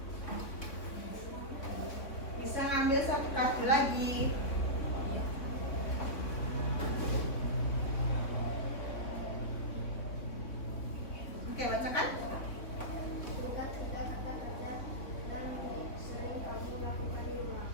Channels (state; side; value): late; right; 3.6 ms